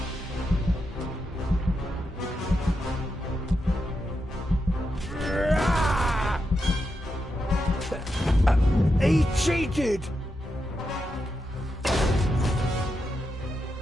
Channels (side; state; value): both; normal; correlation 0.86